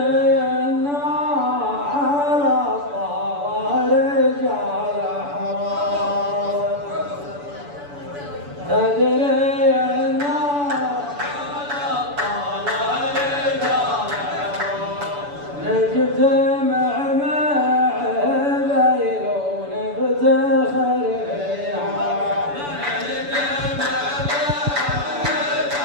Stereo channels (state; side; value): late; left; 7.0 ms